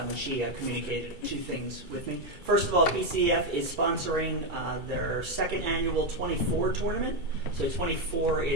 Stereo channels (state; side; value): late; left; 2.3 ms